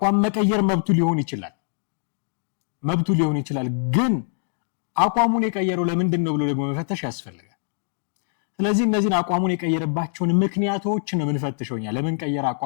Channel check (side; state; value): right; silent; 63 dB below the other